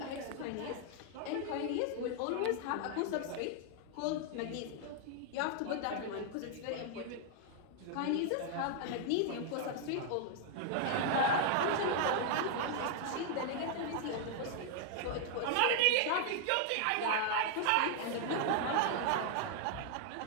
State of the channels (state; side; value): different; both; correlation 0.00